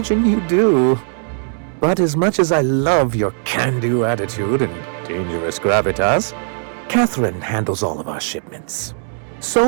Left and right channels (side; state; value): left; silent; digital silence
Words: you do. But as much as I love your can-do attitude and dangerous gravitas, Catherine handles all of our shipments.